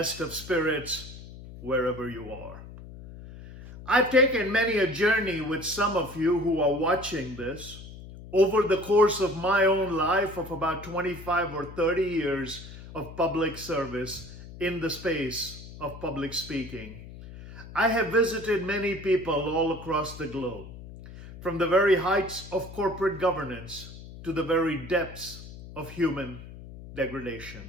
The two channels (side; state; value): left; noise; hum, 15 dB below the sound